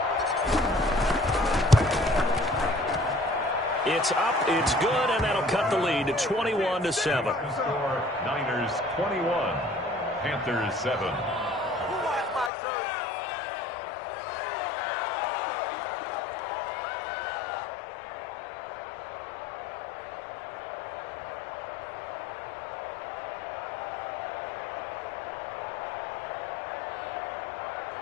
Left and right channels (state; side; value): drops out; right; at 12.5 s